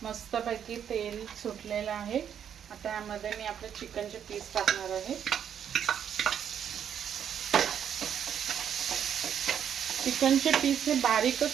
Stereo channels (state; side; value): quieter; left; 8.8 dB